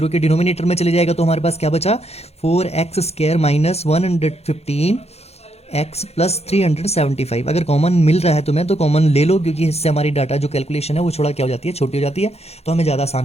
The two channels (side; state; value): right; late; 0.30 ms